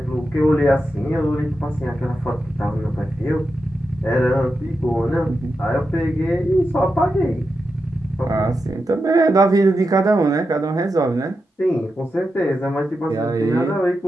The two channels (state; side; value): normal; both; correlation 0.88